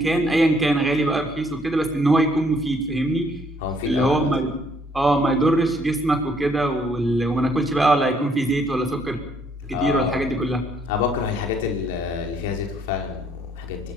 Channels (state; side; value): normal; both; correlation 0.66